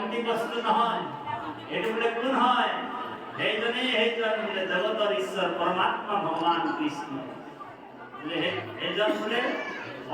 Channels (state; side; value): identical; both; correlation 1.00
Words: বস্তু নহয়, এইটো বোলে কোন হয়? সেইজন বোলে জগতৰ ঈশ্বৰ পৰমাত্মা ভগৱান কৃষ্ণ। বোলে সেইজন বোলে